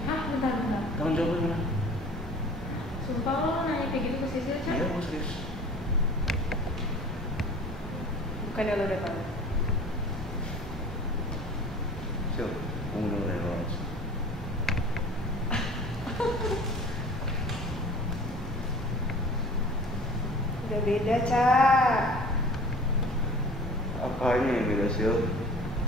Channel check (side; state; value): both; normal; correlation 0.45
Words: Hah, bentar. Tanggung jawab gimana? Sumpah lo nanya kayak gitu ke Sisil, Cak? Iya, gua serius. Bukannya lo udah tahu? Sil, mau dengerin lo langsung. Udah beda, Cak. Apanya yang beda, Sil?